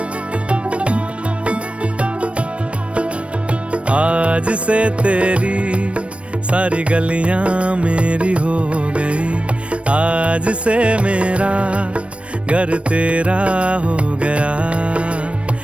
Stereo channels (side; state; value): left; late; 0.061 ms